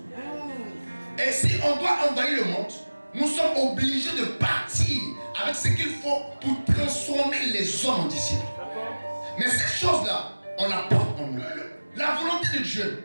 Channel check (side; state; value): both; inverted; correlation -1.00